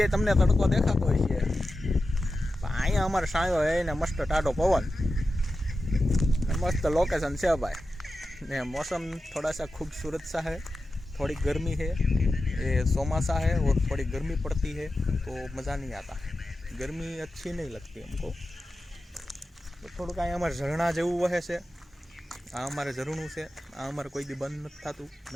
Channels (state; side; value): normal; both; correlation 0.92